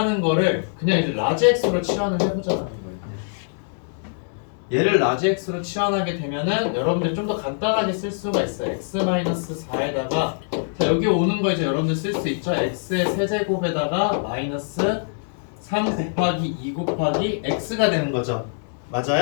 거를 그냥 이제 라지 x로 치환을 해보자는 거예요. 얘를 라지 x로 치환하게 되면은 여러분들 좀 더 간단하게 쓸 수가 있어요. x 마이너스 4에다가 자 여기 오는 거 이제 여러분들 쓸 수 있죠. x의 세제곱에다가 마이너스 3 곱하기 2 곱하기 x가 되는 거죠.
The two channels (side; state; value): right; silent; 63 dB below the other